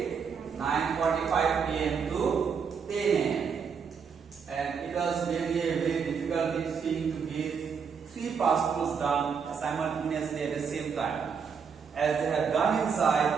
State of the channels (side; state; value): left; quieter; 6.3 dB